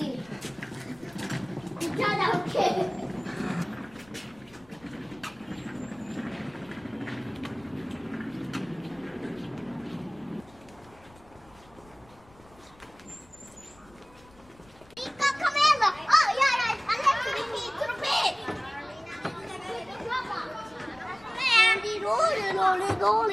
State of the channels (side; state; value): left; noise; rumble, 26 dB below the sound